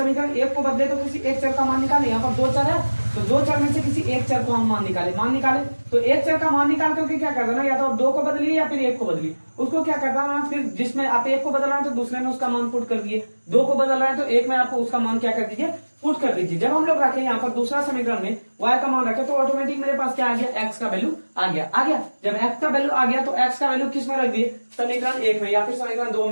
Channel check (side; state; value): both; inverted; correlation -1.00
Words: 1 को बदले तो किसी एक चर का मान निकाले, यहाँ पर 2 चर है तो 2 चर में से किसी एक चर को हम मान निकाले तो एक चर का मान निकाल करके क्या कर देना, या तो आप 2 को बदलिए या फिर 1 को बदलिए, उसको क्या करना है, फिर जिसमें आप 1 को बदल रहे हैं तो दूसरे में उसका मान पुट कर दिए, 2 को बदल रहे हैं तो 1 में आपको उसका मान क्या कर दीजिए पुट कर दीजिए। जब हम लोग रखें यहाँ पर दूसरा समीकरण में y का मान रखे तो ऑटोमेटिक मेरे पास क्या आ गया, x का वैल्यू आ गया। जब x का वैल्यू आ गया तो x का वैल्यू किस में रख दिए, समीकरण 1 में, या फिर समीकरण 2